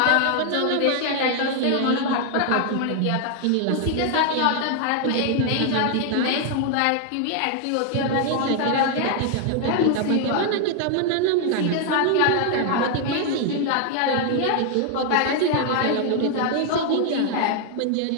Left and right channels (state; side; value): different; both; correlation 0.00